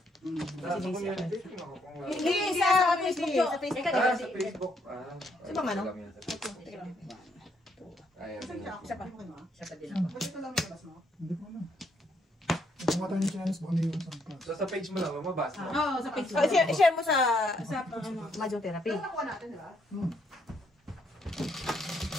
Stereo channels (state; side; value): normal; both; correlation 0.72